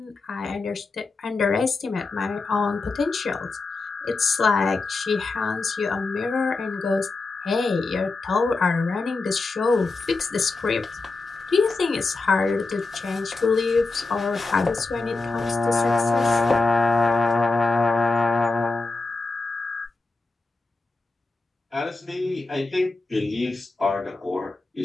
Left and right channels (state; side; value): quieter; right; 3.6 dB